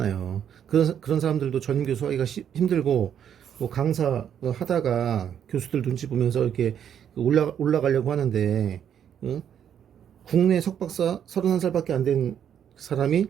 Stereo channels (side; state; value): left; quieter; 9.0 dB